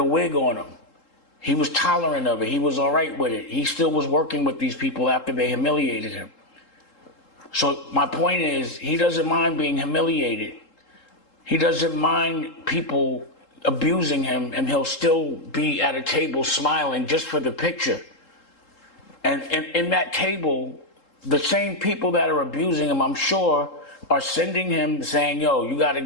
wig on him. He was tolerant of it. He was all right with it. He still was working with these people after they humiliated him. So my point is, he doesn't mind being humiliated. He doesn't mind people abusing him, and he'll still be at a table smiling just for the picture. And in that table, the same people that are abusing him, I'm sure, are sending him saying, yo, you got to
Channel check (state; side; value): late; right; 3.7 ms